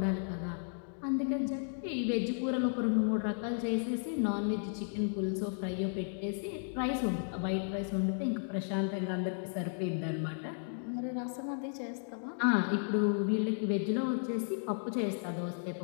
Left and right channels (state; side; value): silent; right; digital silence